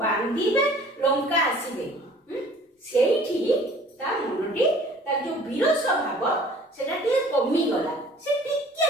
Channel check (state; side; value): normal; both; correlation 0.51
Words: बांधीबे लंका आसीबे सेठी ता मनटी ता जो वीरस भाव सेटा टिके कमी गला से